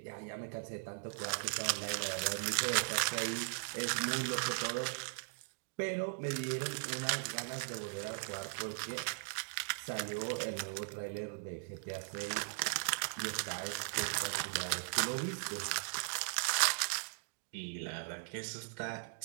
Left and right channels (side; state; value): left; silent; digital silence